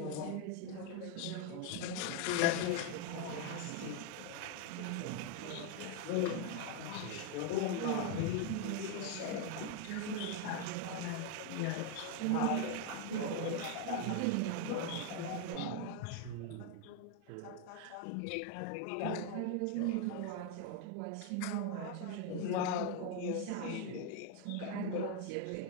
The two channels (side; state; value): both; different; correlation 0.01